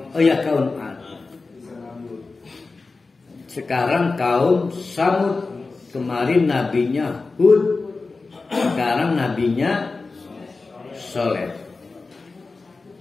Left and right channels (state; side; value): quieter; right; 3.9 dB